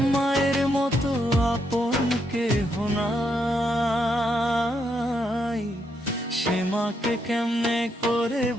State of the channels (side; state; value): both; normal; correlation 0.78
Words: মায়ের মতো আপন কেহ নাই, সে মাকে কেমনে করে